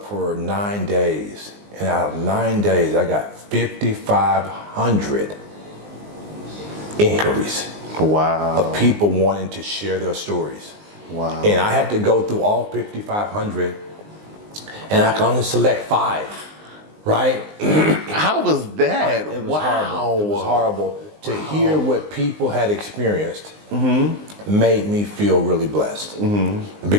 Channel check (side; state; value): left; late; 19 ms